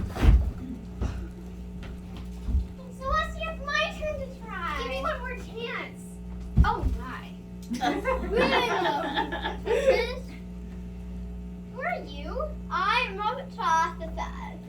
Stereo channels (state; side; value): identical; both; correlation 1.00